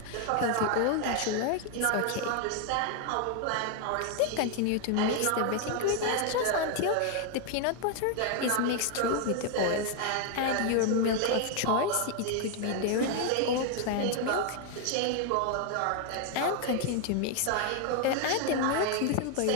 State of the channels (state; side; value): different; both; correlation 0.00